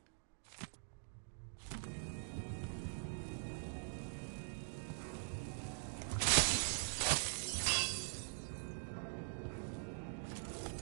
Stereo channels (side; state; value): left; silent; digital silence